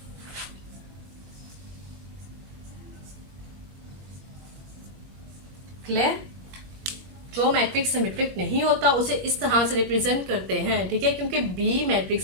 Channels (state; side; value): late; left; 21 ms